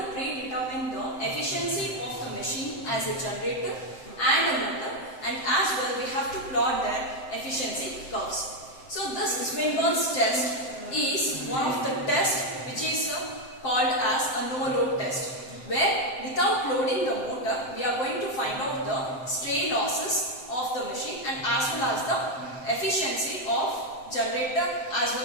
predetermine the efficiency of the machine as a generator and a motor, and as well we have to plot their efficiency curves. So this Swinburne's test is one of the tests which is called as a no-load test, where without loading the motor we are going to find out the stray losses of the machine and as well as the efficiency of generator as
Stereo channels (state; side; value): late; right; 7.7 ms